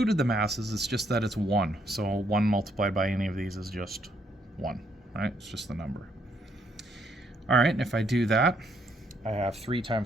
the masses, it's just that it's 1. So 1 multiplied by any of these is just 1, right? It's just the number. All right, and if I do that, I have 3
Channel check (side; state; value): both; normal; correlation 0.72